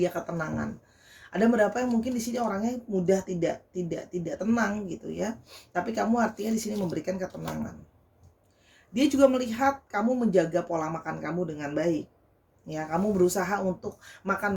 ketenangan. Ada beberapa yang mungkin di sini orangnya mudah tidak tenang gitu ya. Tapi kamu artinya di sini memberikan ketenangan. Dia juga melihat kamu menjaga pola makan kamu dengan baik. Ya, kamu berusaha untuk makan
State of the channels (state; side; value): identical; both; correlation 1.00